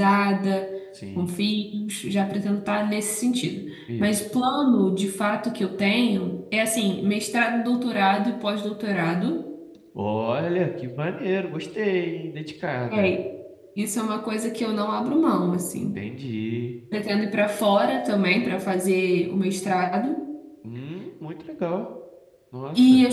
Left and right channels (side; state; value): both; identical; correlation 1.00